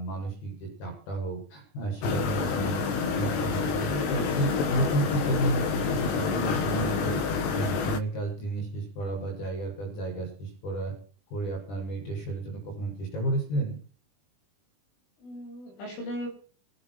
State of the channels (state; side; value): late; right; 20 ms